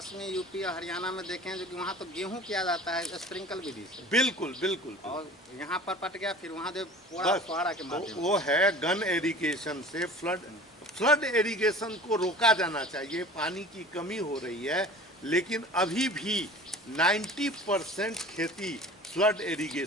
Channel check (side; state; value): both; normal; correlation 0.42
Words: यूपी और हरियाणा में देखे जो कि वहाँ तो गेहूं किया जाता है स्प्रिंकल विधि से। बिल्कुल, बिल्कुल। और यहाँ पर पट गया, फिर वहाँ जो फुहारा के माध्यम वो है गन इरिगेशन से। फ्लड इरिगेशन को रोका जाना चाहिए। पानी की कमी हो रही है, लेकिन अभी भी 90% खेती फ्लड